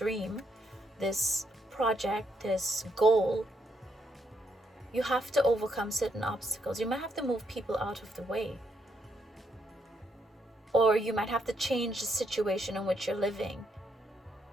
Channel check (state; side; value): normal; both; correlation 0.77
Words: this project, this goal, you have to overcome certain obstacles. You might have to move people out of the way, or you might have to change the situation in which you're living